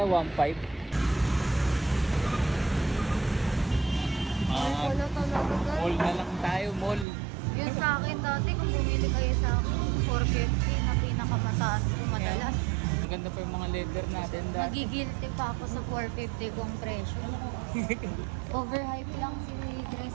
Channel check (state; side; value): drops out; left; at 7.1 s